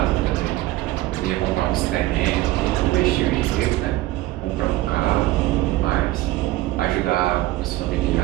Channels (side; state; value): left; quieter; 17.2 dB